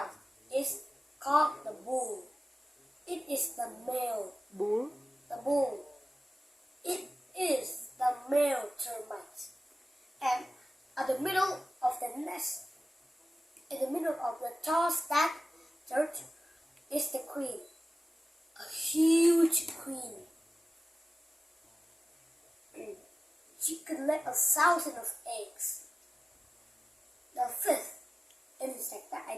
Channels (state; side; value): normal; both; correlation 0.96